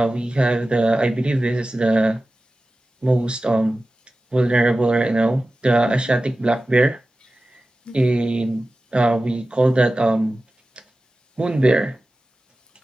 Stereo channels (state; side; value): normal; both; correlation 0.95